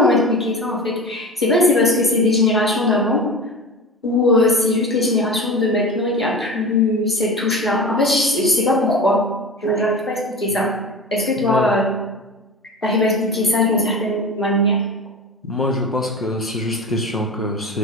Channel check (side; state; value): both; normal; correlation 0.32